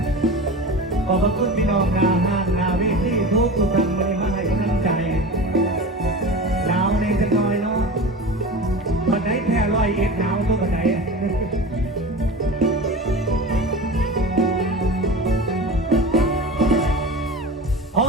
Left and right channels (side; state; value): both; normal; correlation 0.32